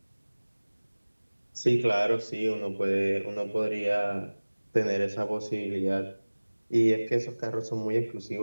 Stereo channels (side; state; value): both; inverted; correlation -1.00